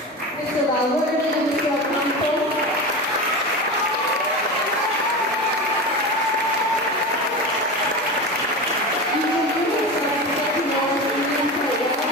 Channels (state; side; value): normal; both; correlation 0.25